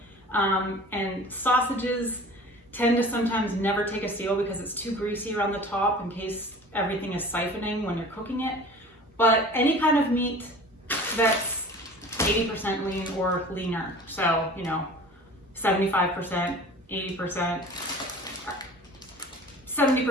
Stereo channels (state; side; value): normal; both; correlation 0.42